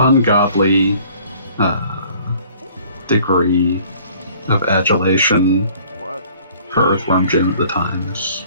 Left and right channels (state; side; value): inverted; both; correlation -0.54